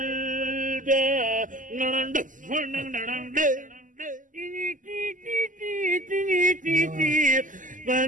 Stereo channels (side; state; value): left; late; 0.38 ms